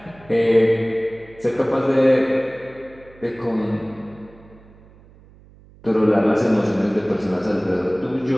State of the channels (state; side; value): noise; right; hum, 25 dB below the sound